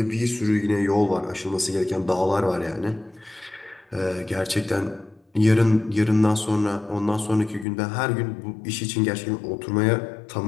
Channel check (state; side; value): drops out; right; at 7.7 s